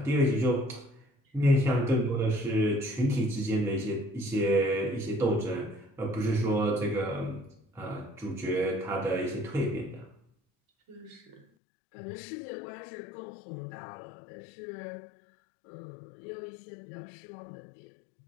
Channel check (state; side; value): drops out; right; at 11.5 s